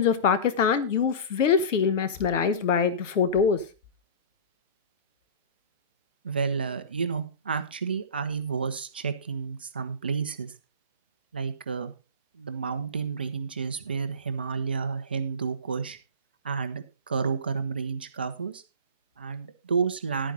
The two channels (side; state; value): both; inverted; correlation -0.32